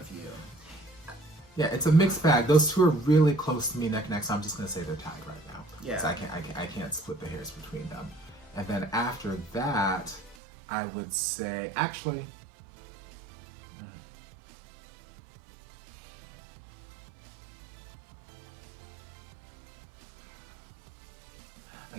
You. Yeah, it's a mixed bag. Those two are really close to me neck and neck, so I'm just gonna say they're tied right now. Yeah. So I can't split the hairs between them. And then after that, I would say actually.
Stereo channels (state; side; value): drops out; left; at 10.4 s